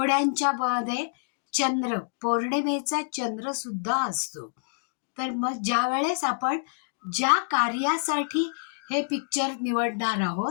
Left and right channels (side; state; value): right; silent; digital silence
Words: मध्ये चंद्र, पौर्णिमेचा चंद्र सुद्धा असतो. तर मग ज्या वेळेस आपण ज्या कार्यासाठी हे पिक्चर निवडणार